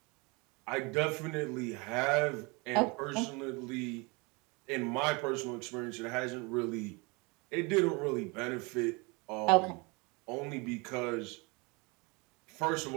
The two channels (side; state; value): left; quieter; 28.2 dB